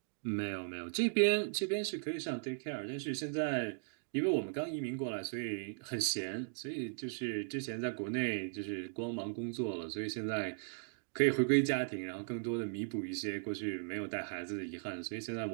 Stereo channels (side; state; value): left; silent; digital silence